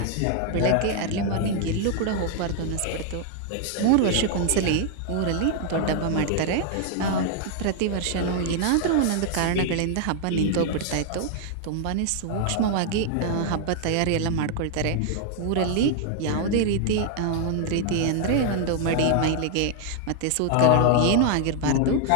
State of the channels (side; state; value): both; different; correlation 0.00